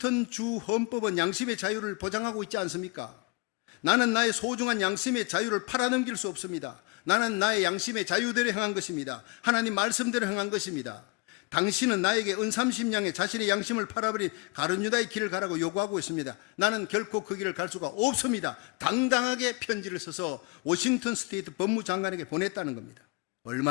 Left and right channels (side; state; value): right; quieter; 26.8 dB